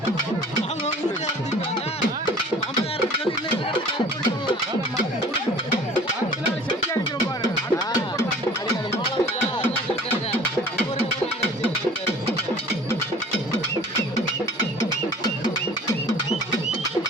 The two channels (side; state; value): both; normal; correlation 0.46